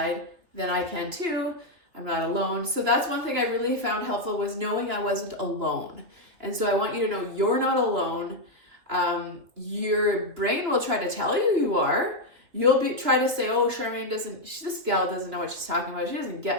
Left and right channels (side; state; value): left; late; 3.0 ms